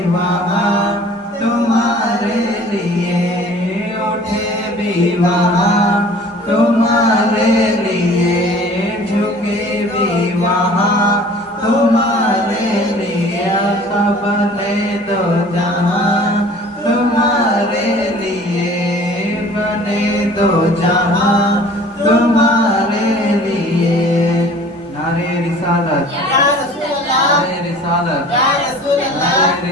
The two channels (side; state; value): both; normal; correlation 0.48